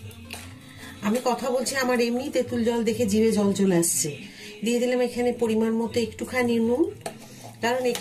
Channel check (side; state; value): both; identical; correlation 1.00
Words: আমি কথা বলছি, আমার এমনি তেঁতুল জল দেখে জিভে জল চলে আসছে। দিয়ে দিলাম এখানে পরিমাণ মতো একটুখানি নুন, কারণ